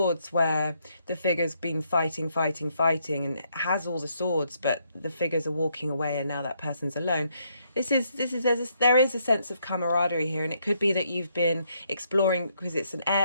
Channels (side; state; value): both; inverted; correlation -0.73